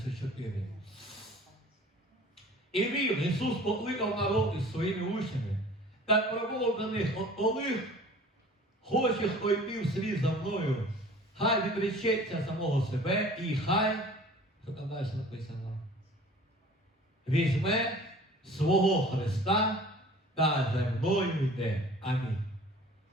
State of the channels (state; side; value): normal; both; correlation 0.46